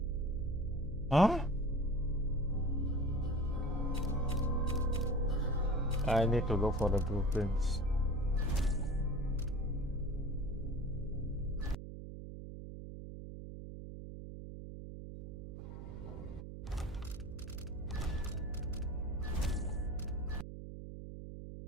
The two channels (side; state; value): right; noise; hum, 10 dB below the sound